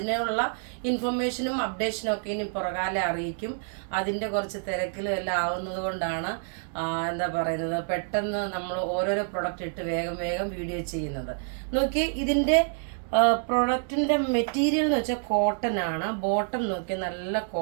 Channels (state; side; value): silent; left; 60 dB below the other